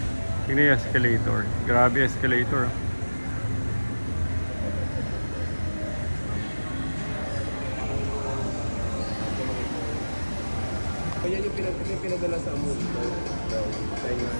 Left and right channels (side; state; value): both; inverted; correlation -1.00